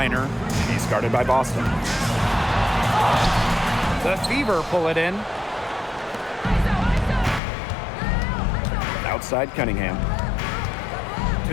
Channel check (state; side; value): drops out; right; at 7.4 s